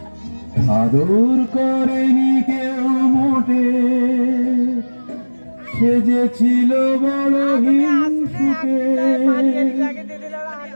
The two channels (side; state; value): both; inverted; correlation -1.00